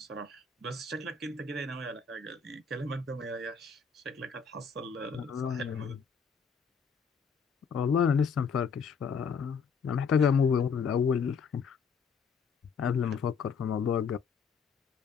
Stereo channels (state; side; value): quieter; right; 5.8 dB